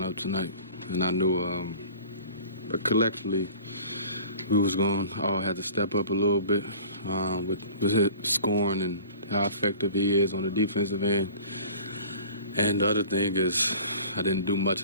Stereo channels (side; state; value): both; inverted; correlation -0.45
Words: tonight, and I knew but collectively we was going to all have to step up a little bit with his scoring and how effective he is on the defensive end. And the other thing is I didn't do much